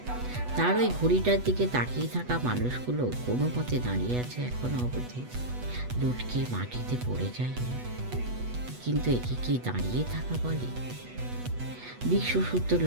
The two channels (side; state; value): left; late; 8.1 ms